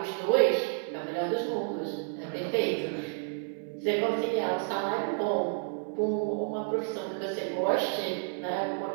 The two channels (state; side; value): silent; left; 58 dB below the other